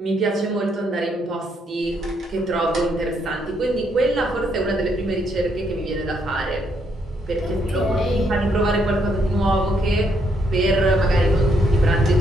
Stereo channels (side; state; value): both; normal; correlation 0.74